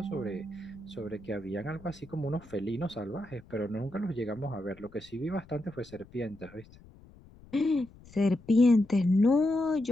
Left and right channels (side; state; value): left; noise; rumble, 23 dB below the sound